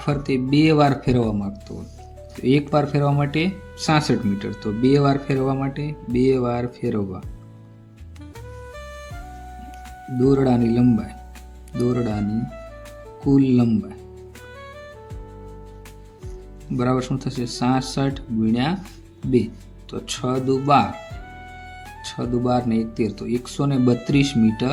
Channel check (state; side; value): identical; both; correlation 1.00